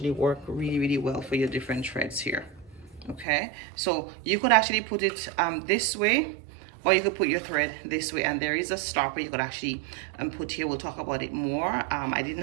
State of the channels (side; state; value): left; drops out; at 3.2 s